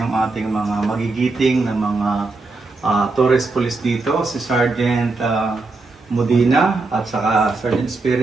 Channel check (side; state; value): left; quieter; 3.6 dB